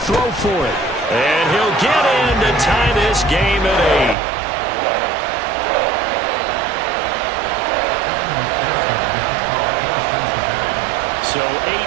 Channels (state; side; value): drops out; left; at 4.2 s